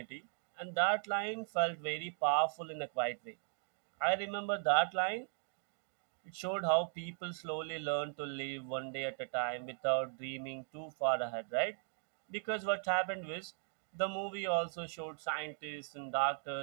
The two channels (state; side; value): silent; left; 52 dB below the other